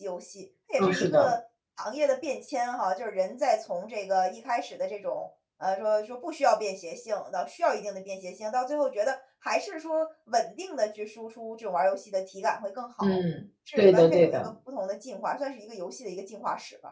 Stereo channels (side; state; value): both; identical; correlation 1.00